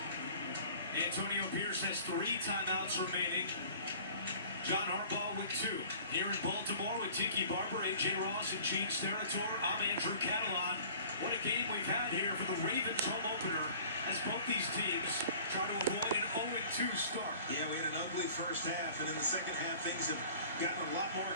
Antonio Pierce has 3 timeouts remaining. John Harbaugh with 2. Here in Baltimore with Tiki Barber, A.J. Ross, and Gene Steratore, I'm Andrew Catalan. What a game we've had here for the Ravens home opener as both these teams try to avoid an 0-2 start. Yeah, we had an ugly first half, and in the second half, things have gotten a lot more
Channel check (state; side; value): inverted; both; correlation -0.47